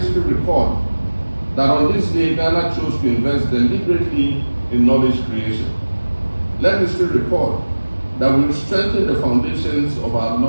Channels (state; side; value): inverted; both; correlation -1.00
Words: record that on this day, Ghana chose to invest deliberately in knowledge creation. Let history record that we strengthened the foundations of our